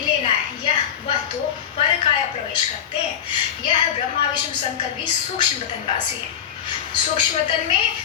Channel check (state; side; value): quieter; right; 9.1 dB